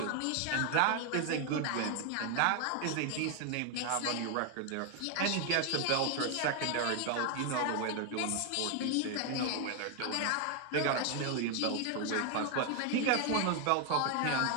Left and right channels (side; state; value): both; different; correlation 0.01